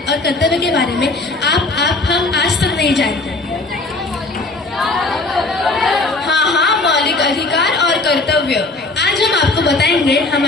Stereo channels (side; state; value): right; quieter; 3.2 dB